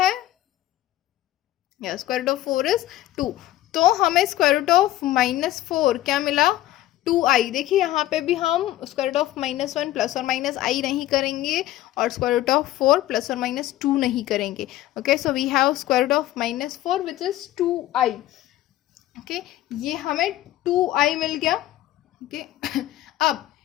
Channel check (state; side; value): quieter; right; 14.7 dB